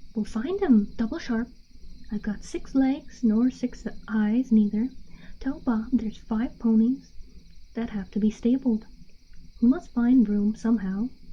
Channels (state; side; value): identical; both; correlation 1.00